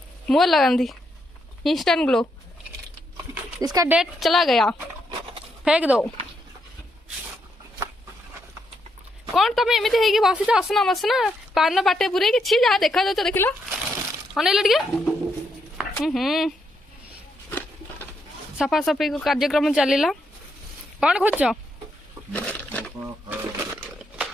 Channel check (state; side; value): normal; both; correlation 0.78